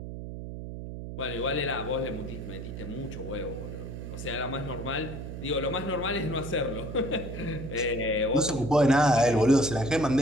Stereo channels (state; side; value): noise; right; hum, 8 dB below the sound